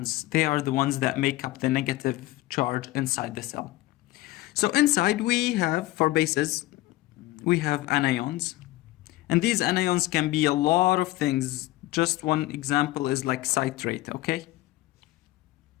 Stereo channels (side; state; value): right; quieter; 17.4 dB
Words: They are the ones that make up the negative charge inside the cell. So inside we have, for bases, we have anions. And these anions can be a lot of things. Just one example is like citrate, okay?